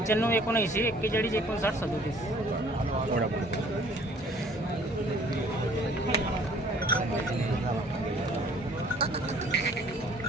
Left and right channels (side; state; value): both; normal; correlation 0.55